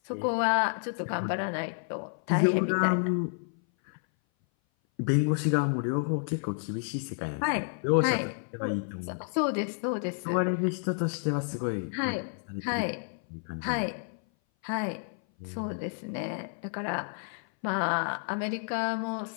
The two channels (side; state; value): right; silent; 57 dB below the other